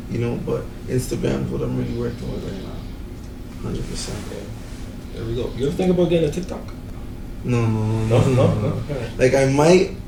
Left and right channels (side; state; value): both; identical; correlation 1.00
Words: but Instagram is what I'm really working with right now. 100%. Yeah. There we go. You ever think about getting a TikTok? No. Like I might,